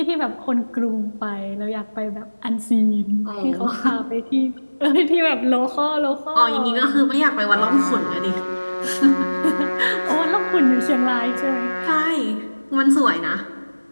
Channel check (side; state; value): both; inverted; correlation -1.00